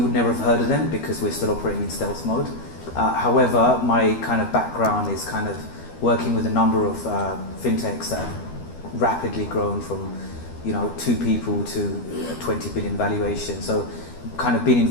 would never have heard of them because we're still operating in stealth mode. However, my kind of background is kind of working with a number of fintechs that have rapidly grown from 2 people to a 20 billion valuation. So kind of been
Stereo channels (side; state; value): right; late; 12 ms